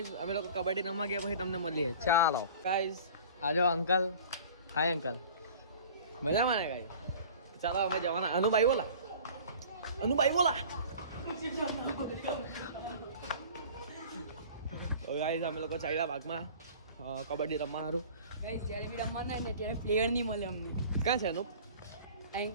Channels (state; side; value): inverted; both; correlation -0.44